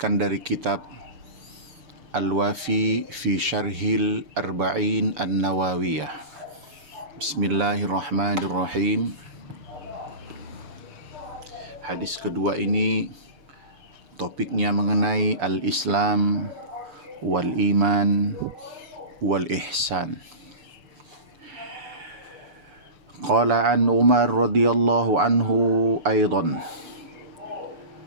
dari kitab Al-Wafi fi Syarhil Arba'in An-Nawawiyah. Bismillahirrahmanirrahim. Hadis kedua ini topiknya mengenai al-Islam wal iman wal ihsan. Qala an Umar radhiyallahu anhu aidan.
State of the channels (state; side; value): late; left; 7.0 ms